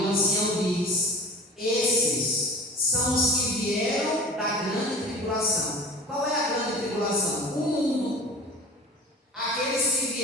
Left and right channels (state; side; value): normal; both; correlation 0.39